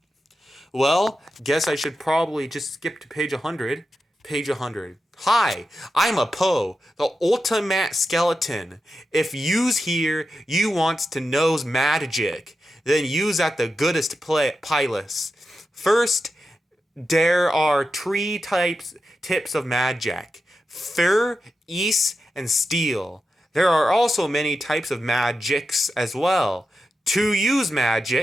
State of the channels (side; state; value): both; normal; correlation 0.90